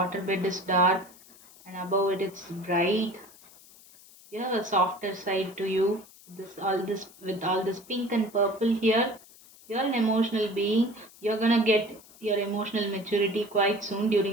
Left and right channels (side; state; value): left; noise; hiss, 23 dB below the sound